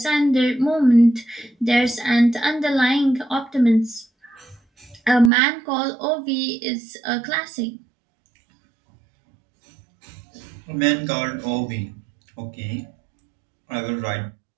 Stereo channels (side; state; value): left; drops out; at 5.3 s